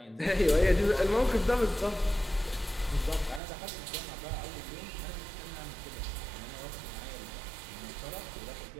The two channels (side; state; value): left; drops out; at 3.4 s